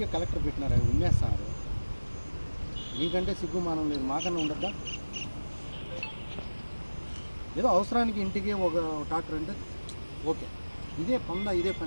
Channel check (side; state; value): both; inverted; correlation -1.00